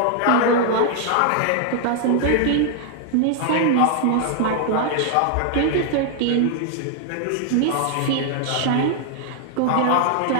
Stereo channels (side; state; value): both; different; correlation 0.00